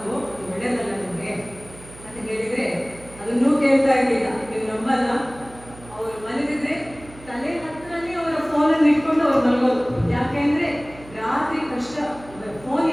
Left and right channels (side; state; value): right; noise; hum, 20 dB below the sound